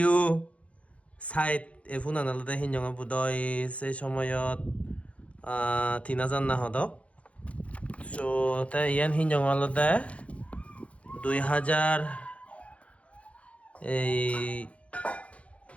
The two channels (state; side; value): late; right; 0.063 ms